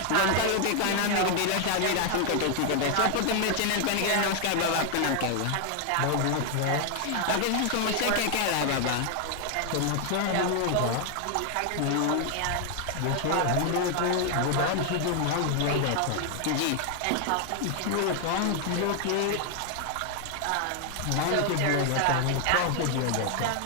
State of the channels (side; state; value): both; different; correlation 0.00